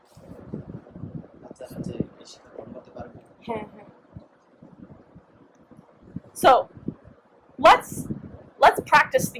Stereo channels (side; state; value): both; identical; correlation 1.00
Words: বাচ্চারা যে এই শিক্ষা গ্রহণ করতে পারবে হ্যাঁ হ্যাঁ so let's practice